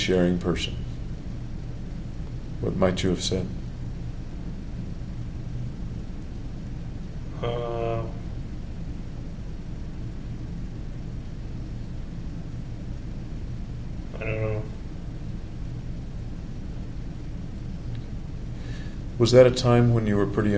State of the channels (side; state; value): both; identical; correlation 1.00